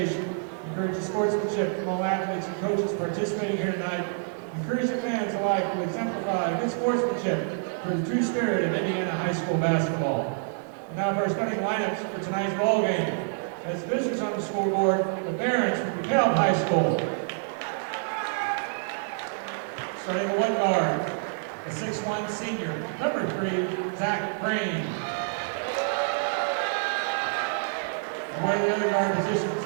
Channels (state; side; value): silent; left; 60 dB below the other